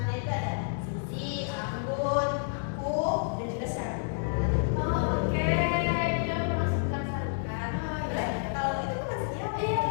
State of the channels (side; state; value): right; silent; digital silence